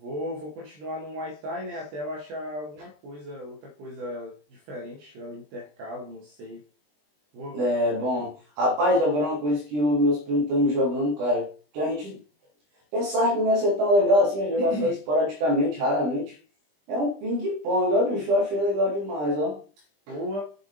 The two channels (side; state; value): left; late; 20 ms